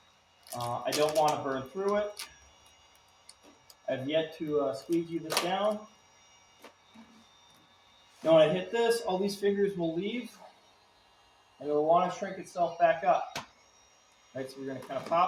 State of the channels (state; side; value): identical; both; correlation 1.00